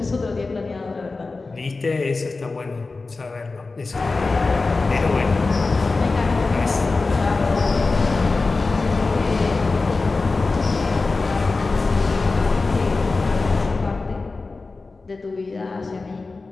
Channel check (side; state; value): right; quieter; 3.8 dB